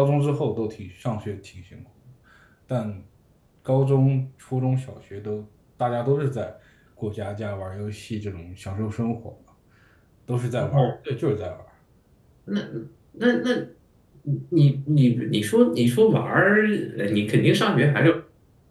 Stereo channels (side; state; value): both; identical; correlation 1.00